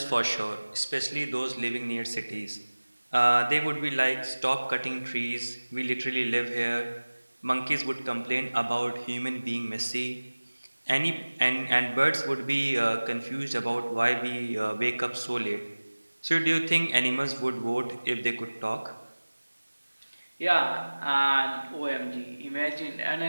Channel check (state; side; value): inverted; both; correlation -1.00